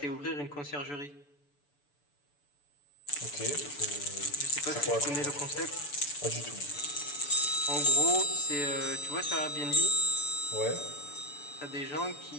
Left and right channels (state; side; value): late; right; 6.9 ms